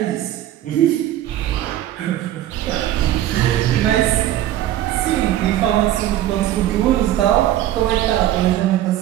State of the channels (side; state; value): left; quieter; 13.0 dB